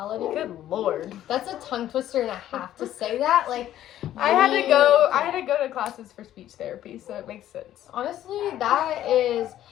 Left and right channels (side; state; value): right; quieter; 12.3 dB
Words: Good Lord. That's a tongue twister and a half to say that. Like, I had to go to classes for speech therapy, so it makes sense. Honestly, that is